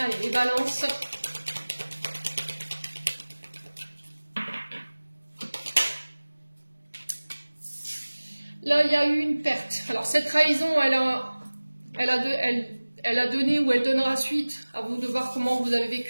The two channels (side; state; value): both; inverted; correlation -1.00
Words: les balances. Là, il y a eu une perte. Alors, cette trahison, elle a donné ou elle donnera suite. À vous de voir comment vous avez